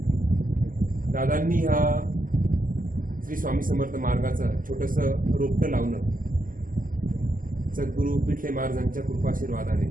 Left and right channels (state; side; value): late; left; 0.40 ms